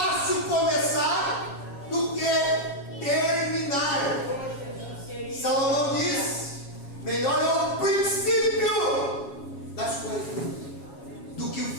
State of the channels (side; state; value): right; late; 7.3 ms